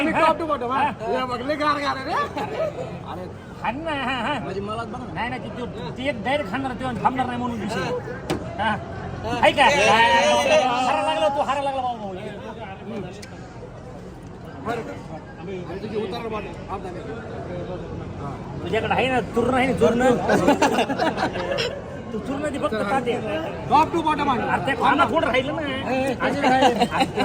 मी टॉप टू बॉटम बघले गार गार रे खान ना नाही ना ती एक डायरेक्ट खाणार तेव्हा थांबणार नाही म्हणून विषय आहे का हारा लागला तो हारा लागला बाबा तुझ्याकडे आहे ना चूर्ण आहे ना चूर्ण तू चूर्ण ती फक्त खाते टॉप टू बॉटम अरे ते खाना थोडं राहिलं ना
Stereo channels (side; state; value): both; identical; correlation 1.00